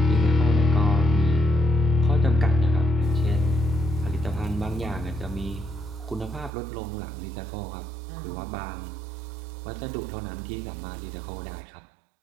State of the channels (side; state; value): left; drops out; at 6.5 s